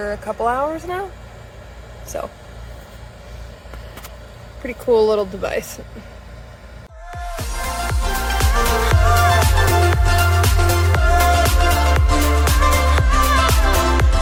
a couple hours now. So, pretty cool little device.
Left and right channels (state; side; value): identical; both; correlation 1.00